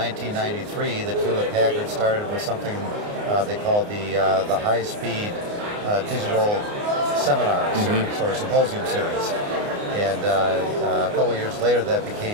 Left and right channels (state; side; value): late; left; 29 ms